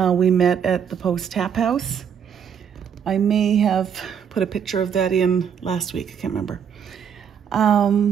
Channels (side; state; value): left; quieter; 7.8 dB